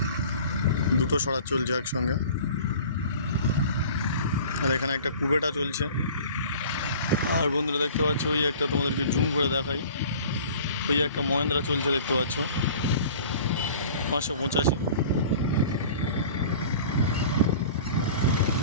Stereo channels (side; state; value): both; inverted; correlation -0.44